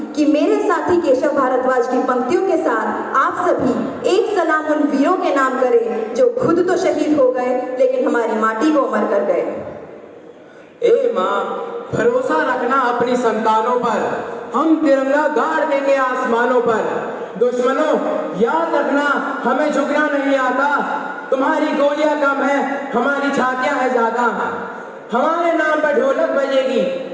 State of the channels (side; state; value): both; identical; correlation 1.00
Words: कि मेरे साथी केशव भारद्वाज की पंक्तियों के साथ आप सभी एक सलाम उन वीरों के नाम करें जो खुद तो शहीद हो गए लेकिन हमारी माटी को अमर कर गए। ए माँ, भरोसा रखना अपनी संतानों पर, हम तिरंगा गाड़ देंगे आसमानों पर। दुश्मनों याद रखना, हमें झुकना नहीं आता। तुम्हारी गोलियां कम है, हमारी छातियां है ज्यादा। हमारे नाम पर ढोलक बजेगी,